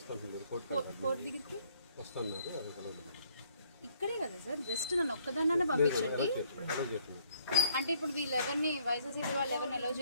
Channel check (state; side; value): inverted; both; correlation -0.64